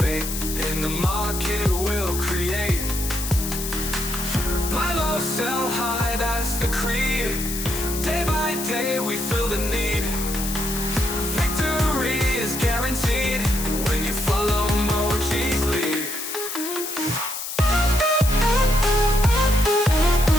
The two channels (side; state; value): left; noise; hiss, 6 dB below the sound